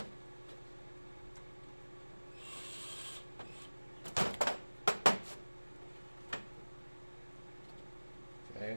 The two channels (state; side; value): inverted; both; correlation -1.00